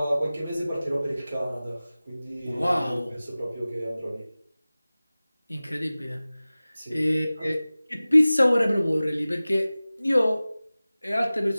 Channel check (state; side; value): inverted; both; correlation -0.98